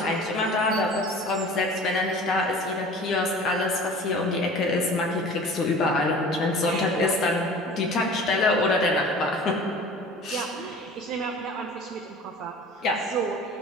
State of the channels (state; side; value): normal; both; correlation 0.42